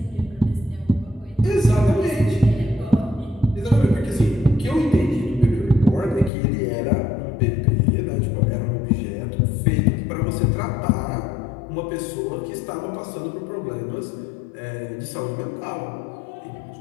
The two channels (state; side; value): drops out; right; at 6.3 s